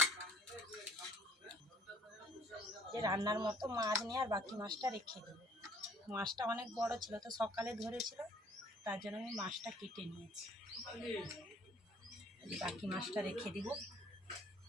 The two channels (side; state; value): both; normal; correlation 0.58